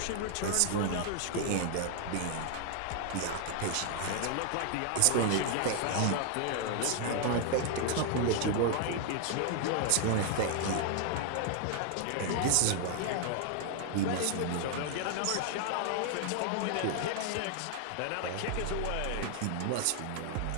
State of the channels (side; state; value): both; different; correlation 0.00